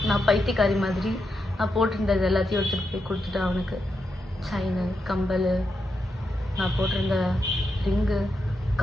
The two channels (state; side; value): normal; both; correlation 0.85